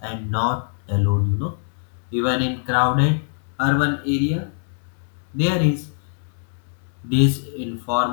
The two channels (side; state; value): right; silent; 63 dB below the other